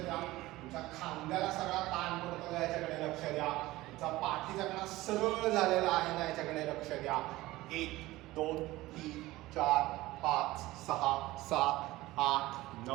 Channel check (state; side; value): quieter; left; 18.1 dB